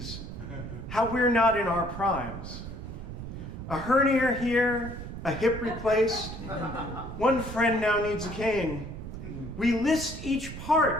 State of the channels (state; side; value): noise; right; rumble, 9 dB below the sound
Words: how we're not in our primes. A hernia here, a hip replaced. One friend now needs a cane. We list each